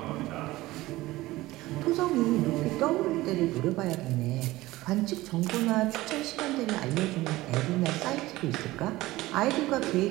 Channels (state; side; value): quieter; left; 18.2 dB